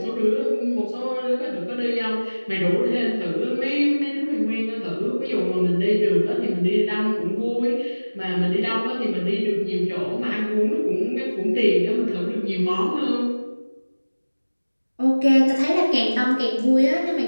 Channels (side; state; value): both; inverted; correlation -1.00